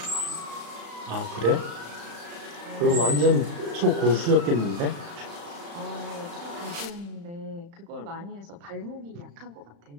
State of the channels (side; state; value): left; late; 35 ms